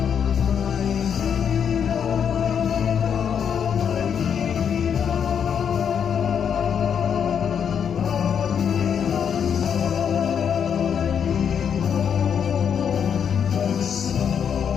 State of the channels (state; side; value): quieter; right; 7.7 dB